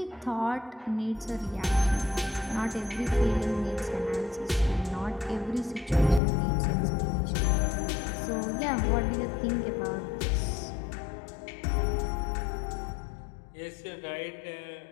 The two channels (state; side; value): drops out; right; at 6.2 s